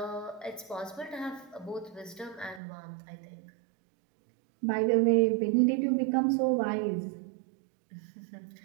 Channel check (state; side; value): drops out; left; at 2.6 s